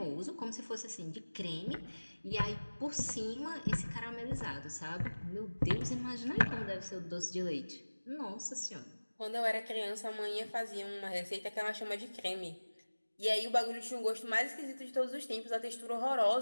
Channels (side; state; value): both; inverted; correlation -1.00